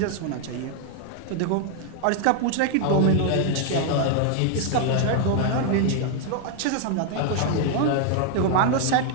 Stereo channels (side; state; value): both; different; correlation 0.00